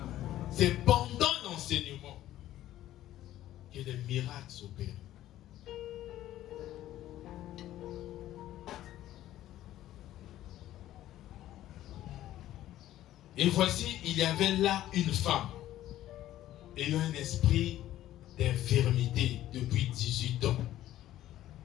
C'est pendant l'enseignement que les miracles s'opèrent. Et voici, il y avait là une femme ayant un esprit d'infirmité depuis 18 ans.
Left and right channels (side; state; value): right; quieter; 13.6 dB